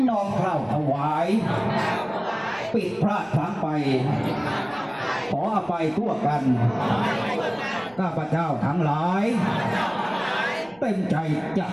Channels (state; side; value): noise; right; rumble, 29 dB below the sound